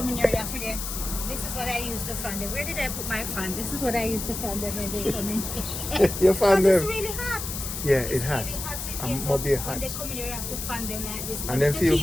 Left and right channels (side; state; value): left; noise; hiss, 6 dB below the sound